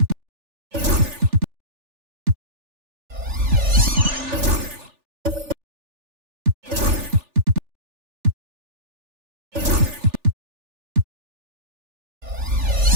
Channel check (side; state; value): left; late; 3.4 ms